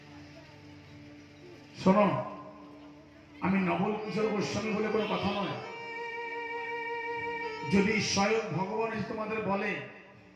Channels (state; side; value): identical; both; correlation 1.00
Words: শোনো, আমি নবল কিশোর গোস্বামী বলে কোনো কথা নয়। যদি স্বয়ং ভগবান এসে তোমাদের বলে